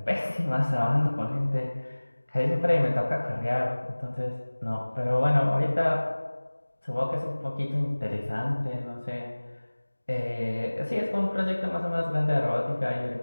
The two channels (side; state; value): both; inverted; correlation -1.00